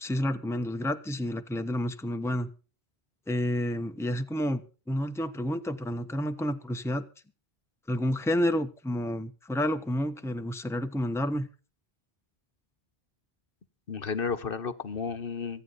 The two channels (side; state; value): both; normal; correlation 0.76